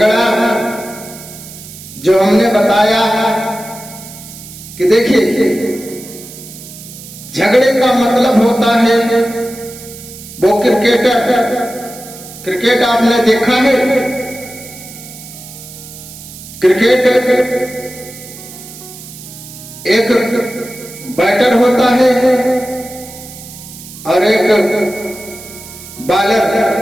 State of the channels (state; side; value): noise; right; hiss, 15 dB below the sound